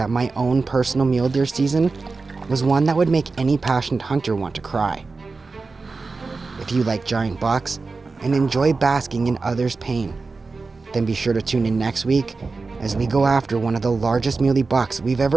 my own personal mule deer season was one that would make any passionate hunter want to cry? If you like giant bucks and enjoy basking in others' pain, then be sure to tune in next week as we go after one of the largest muley bucks we've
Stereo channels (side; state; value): left; quieter; 4.0 dB